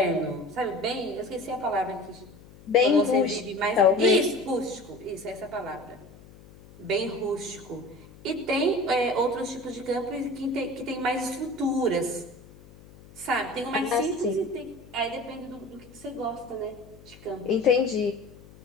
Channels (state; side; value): noise; left; hum, 22 dB below the sound